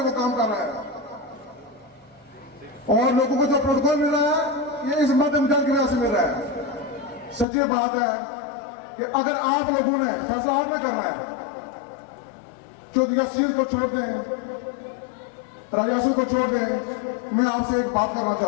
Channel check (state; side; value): drops out; right; at 7.5 s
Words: काम कर रहा है, और लोगों को जो प्रोटोकॉल मिल रहा है ये इस मध्यम जल की वजह से मिल रहा है। सच्ची बात है कि अगर आप लोगों ने फैसला आपने करना है, चौधरी शीर को छोड़ दें, राजासू को छोड़ दें, मैं आपसे एक बात करना